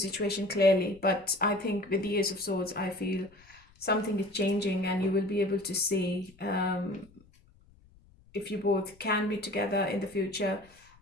clearly. But I think with the Ace of Swords, I feel something is changing, and you will be able to see if you both can be together in the future,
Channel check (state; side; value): noise; left; rumble, 28 dB below the sound